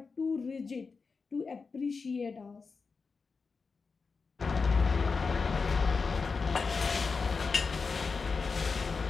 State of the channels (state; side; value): quieter; right; 4.7 dB